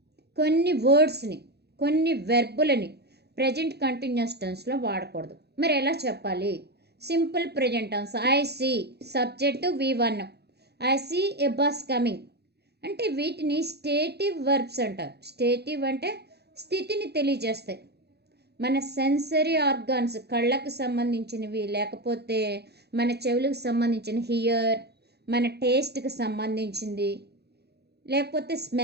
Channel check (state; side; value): late; left; 0.48 ms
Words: కొన్ని వర్డ్స్ని, కొన్ని వెర్బులని ప్రజెంట్ కంటిన్యూస్ టెన్స్లో వాడకూడదు. మరి ఎలా చెప్పాలి? Simple present tense. I see, subject V1. I see a bus coming అంటే వీటిని స్టేటివ్ వర్బ్స్ అంటారు. స్టేటివ్ అంటే స్థితిని తెలియజేస్తాయి. మన సెన్సరీ ఆర్గాన్స్, కళ్ళకు సంబంధించినవి, లేకపోతే మన చెవులకు సంబంధించిన హియర్, మన టేస్ట్కి సంబంధించింది, లేకపోతే